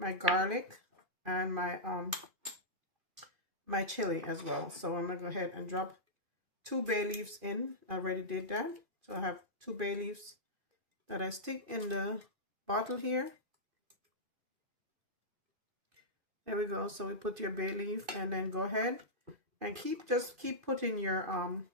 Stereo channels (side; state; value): left; late; 2.5 ms